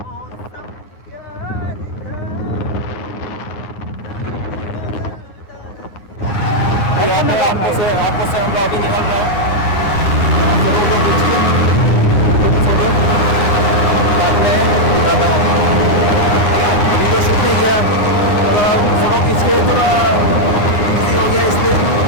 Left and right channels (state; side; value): late; right; 9.7 ms